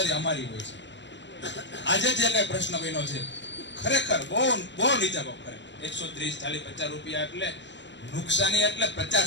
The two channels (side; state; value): right; late; 0.53 ms